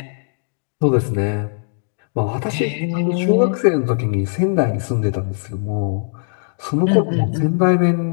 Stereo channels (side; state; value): right; silent; digital silence